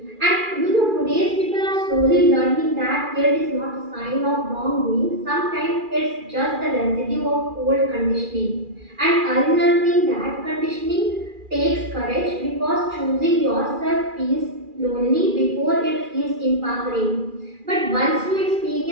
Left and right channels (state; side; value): late; left; 2.4 ms